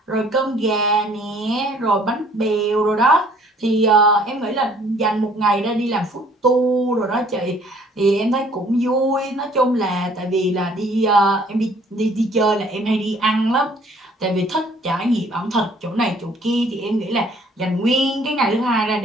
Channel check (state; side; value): normal; both; correlation 0.58